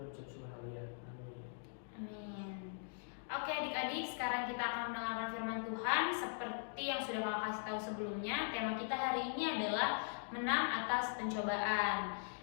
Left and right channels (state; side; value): silent; right; digital silence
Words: ucap syukur, haleluya. Amin. Amin. Oke adik-adik, sekarang kita akan mendengarkan firman Tuhan. Seperti yang sudah kakak kasih tahu sebelumnya, tema kita hari ini adalah menang atas pencobaan.